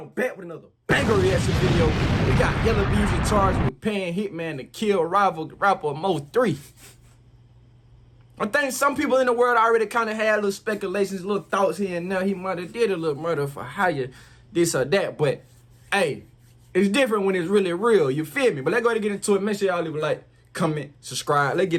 back with another banger reaction video? We got Yella Beezy charged with paying Hitman to kill rival rapper MO3. I think some people in the world already kind of had little speculations, little thoughts here and there. He might have did a little murder for hire, this or that. But, hey, it's different when it's really real. You feel me? But let's go ahead and get into it. Make sure y'all leave a like, comment, subscribe. Let's get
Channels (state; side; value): identical; both; correlation 1.00